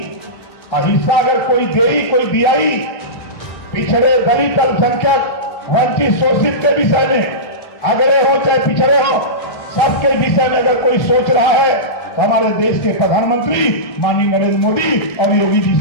और हिस्सा अगर कोई दे, कोई दियाई, पिछड़े दलित, अल्पसंख्यक, वंचित, शोषित के विषय में अगड़े हो चाहे पिछड़े हो, सबके विषय में अगर कोई सोच रहा है तो हमारे देश के प्रधानमंत्री माननीय नरेंद्र मोदी और योगी जी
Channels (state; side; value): late; right; 1.6 ms